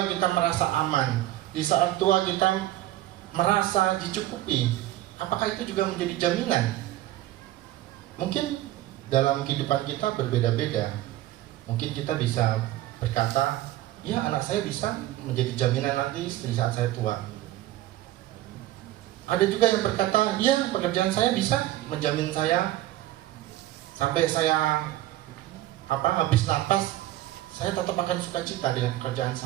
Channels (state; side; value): quieter; left; 15.1 dB